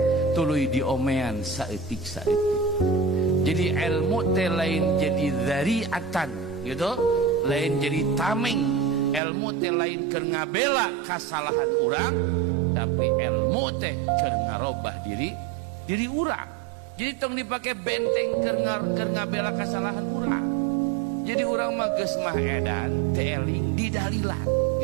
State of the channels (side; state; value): left; drops out; at 9.2 s